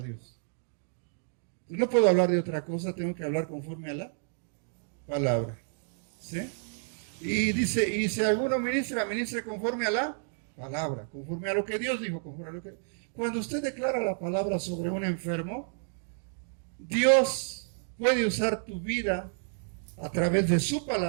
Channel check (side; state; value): left; silent; digital silence